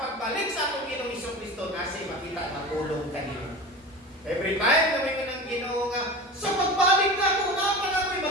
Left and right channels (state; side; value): normal; both; correlation 0.31